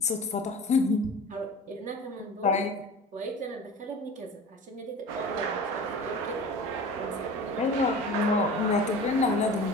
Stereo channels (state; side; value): normal; both; correlation 0.37